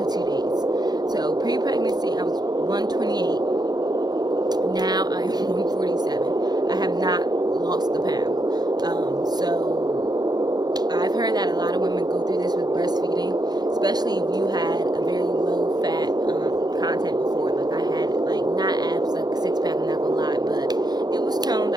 days. So pre-pregnancy, I was 128. Now I am 147. I have not lost the pound. So I've heard that a lot of women go through this with breastfeeding, especially if you had a very low fat content before. Like I had, like, not abs, like a six pack, I'm not gonna lie, but it was toned.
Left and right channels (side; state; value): left; late; 0.20 ms